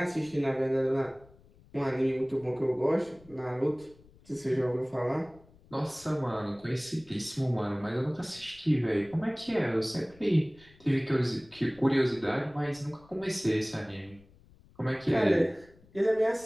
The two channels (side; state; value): left; noise; rumble, 26 dB below the sound